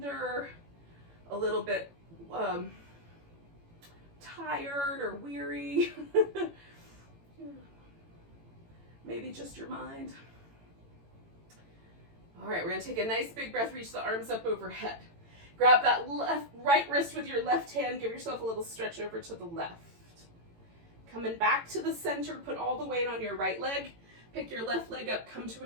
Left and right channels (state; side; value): late; left; 18 ms